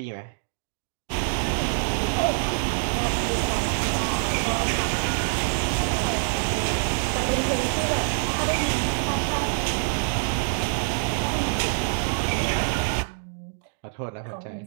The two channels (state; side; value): silent; left; digital silence